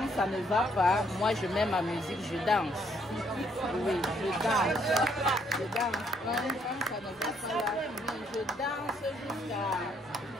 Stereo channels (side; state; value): both; normal; correlation 0.69